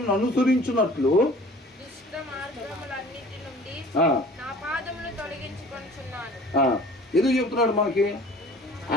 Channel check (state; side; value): normal; both; correlation 0.47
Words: అనుసరించినట్లు ఎందుకు చెప్తున్నాడు మనకి?